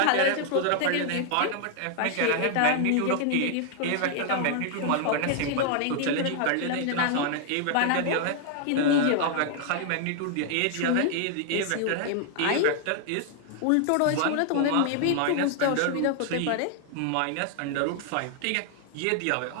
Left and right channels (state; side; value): different; both; correlation 0.00